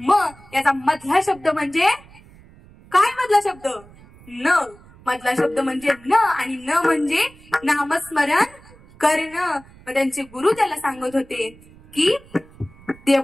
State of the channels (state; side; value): noise; right; rumble, 24 dB below the sound